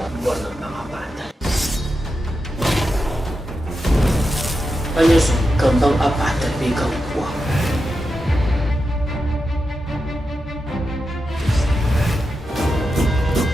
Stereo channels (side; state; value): both; normal; correlation 0.88